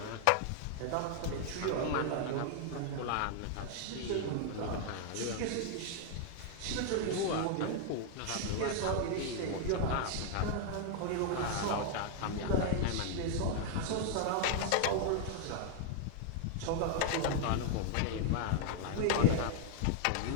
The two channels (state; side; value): different; both; correlation 0.00